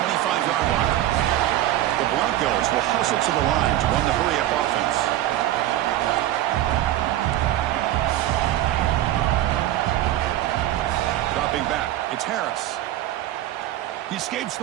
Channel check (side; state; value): left; quieter; 13.9 dB